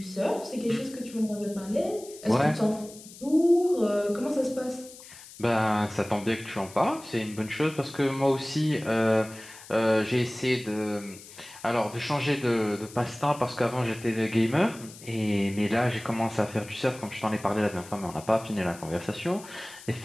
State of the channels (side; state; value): left; noise; hiss, 18 dB below the sound